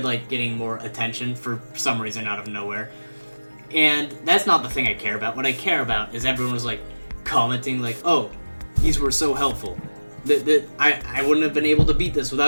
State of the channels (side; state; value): both; inverted; correlation -1.00